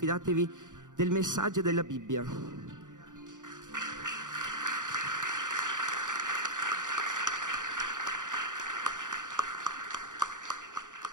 del messaggio della Bibbia.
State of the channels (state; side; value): late; left; 0.87 ms